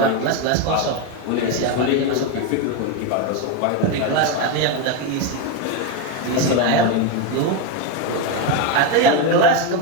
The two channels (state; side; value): different; both; correlation 0.03